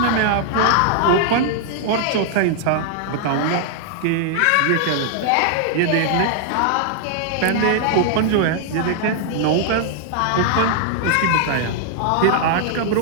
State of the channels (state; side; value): different; both; correlation 0.00